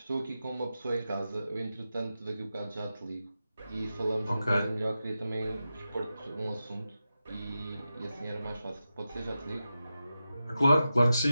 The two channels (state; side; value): inverted; both; correlation -0.91